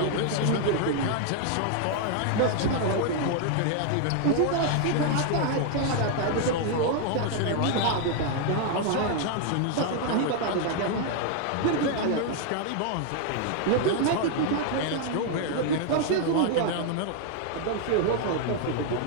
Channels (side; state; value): both; different; correlation 0.00